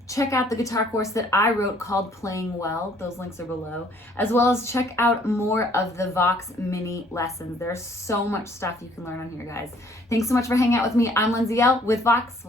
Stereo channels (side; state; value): both; normal; correlation 0.61